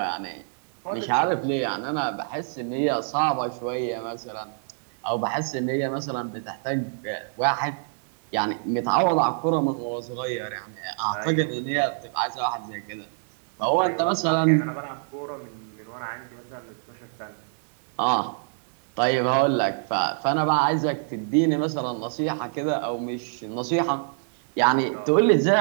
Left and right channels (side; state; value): left; silent; 61 dB below the other